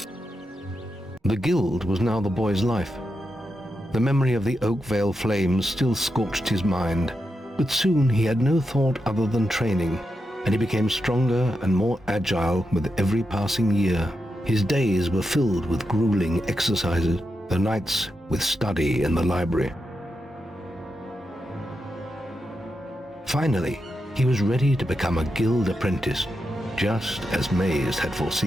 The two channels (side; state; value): both; normal; correlation 0.87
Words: The guild was now the boy's life. The memory of the Oakvale flames still scorched his mind, but soon he had no thought other than training, and he became stronger and more agile with every passing year. His days were filled with grueling exercises, the nights with study in the library. Finally, he was ready to become a guild apprentice, just as Maze had